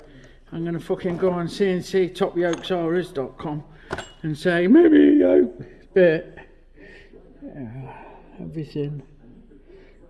I'm gonna fucking go on cnctopyokesrs.com and say, maybe a yoke bit. Everything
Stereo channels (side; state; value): both; identical; correlation 1.00